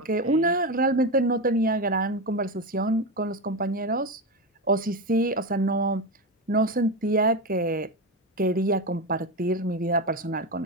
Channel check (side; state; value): both; normal; correlation 0.16